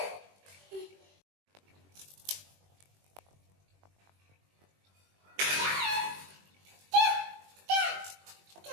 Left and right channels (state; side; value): late; left; 21 ms